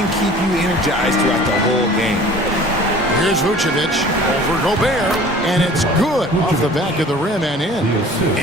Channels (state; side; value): normal; both; correlation 0.46